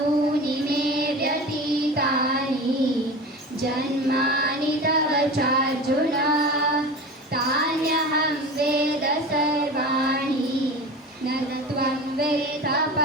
मे व्यतीतानि जन्मानि तव चार्जुन तान्यहं वेद सर्वाणि न त्वं वेद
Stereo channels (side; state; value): both; normal; correlation 0.32